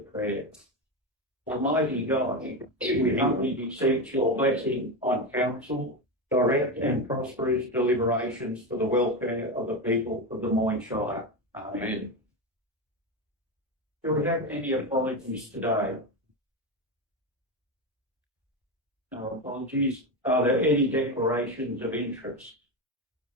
Almighty God, we humbly beseech your blessing on council, direct and prosperous deliberations for the welfare of the people of the Moyne Shire. Amen. Do we have any apologies today? No apologies. Are there any declarations of interest?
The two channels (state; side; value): normal; both; correlation 0.15